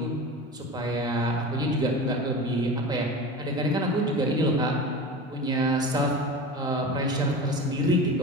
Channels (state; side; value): normal; both; correlation 0.31